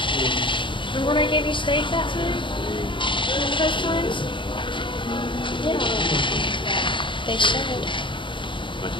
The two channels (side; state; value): right; late; 0.24 ms